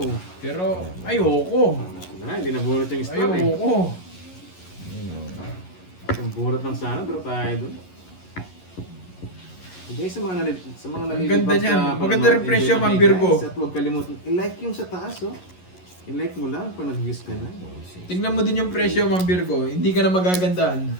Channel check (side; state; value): right; late; 11 ms